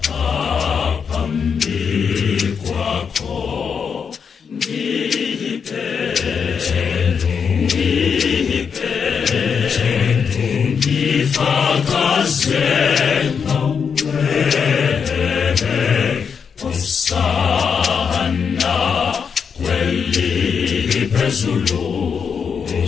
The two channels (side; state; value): right; quieter; 6.4 dB